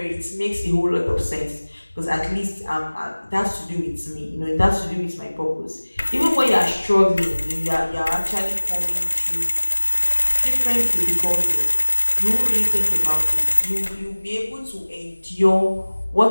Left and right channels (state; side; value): inverted; both; correlation -1.00